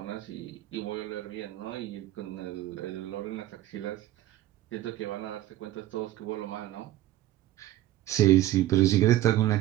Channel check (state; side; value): quieter; left; 14.3 dB